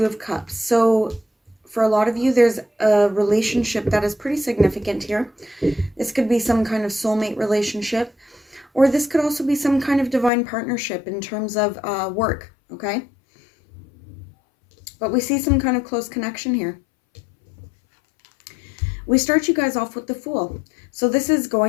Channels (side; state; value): right; drops out; at 10.3 s